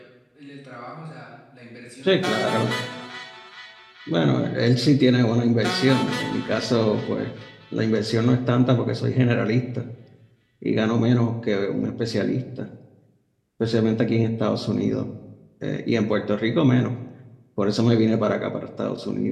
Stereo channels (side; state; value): both; identical; correlation 1.00